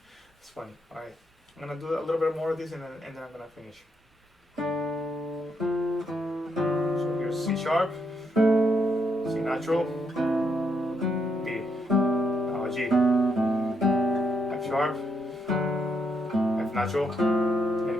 It's funny. Alright, I'm gonna do a little bit more of this and then I'm gonna finish. So here's C sharp, C natural, B, now G, F sharp, F natural,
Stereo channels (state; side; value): normal; both; correlation 0.78